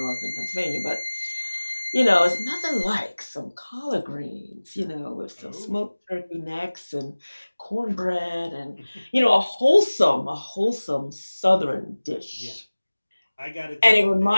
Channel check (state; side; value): inverted; both; correlation -1.00